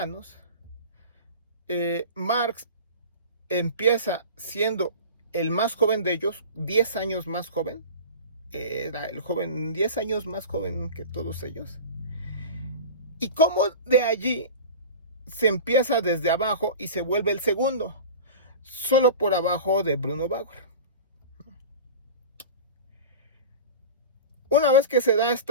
Marx empieza siendo el más joven de ellos, 10 años más joven. Era el joven 10 años más joven que todos ellos. Y cómo de allí se empieza desde abajo y se vuelve el segundo, solo por abajo de Bruno Bauer. Una vez que se da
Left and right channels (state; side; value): inverted; both; correlation -0.34